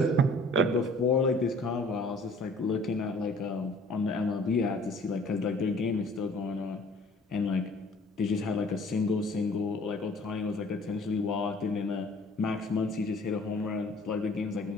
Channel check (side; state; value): both; normal; correlation 0.53